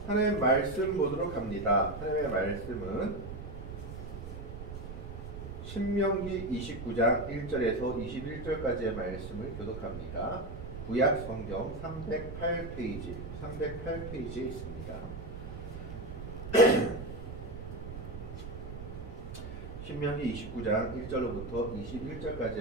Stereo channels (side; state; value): right; noise; rumble, 9 dB below the sound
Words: 하나님의 말씀 보도록 합니다. 하나님의 말씀은 신명기 29장 1절에서 21절까지의 말씀을 교독합니다. 구약 성경 308페이지에 있습니다. 신명기 29장 1절로부터